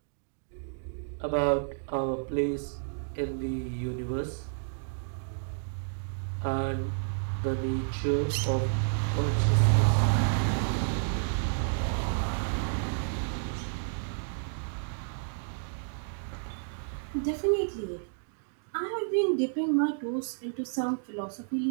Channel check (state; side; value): silent; left; digital silence